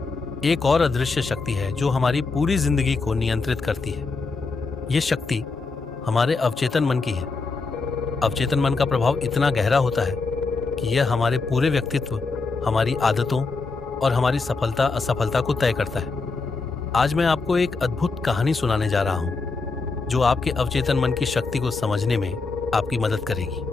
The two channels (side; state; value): right; quieter; 4.1 dB